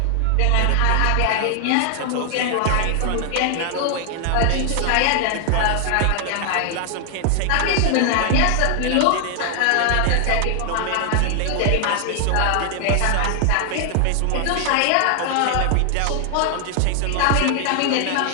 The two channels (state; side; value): different; both; correlation 0.00